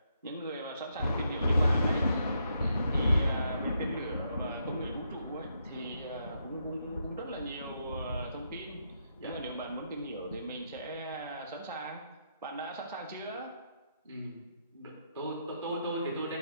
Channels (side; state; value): both; inverted; correlation -0.78